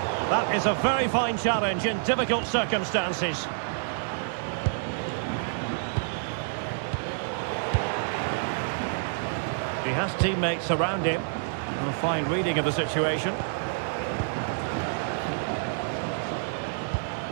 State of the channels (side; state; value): left; silent; digital silence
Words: That is a very fine challenge in difficult circumstances. He has teammates around him. A fine reading of the situation.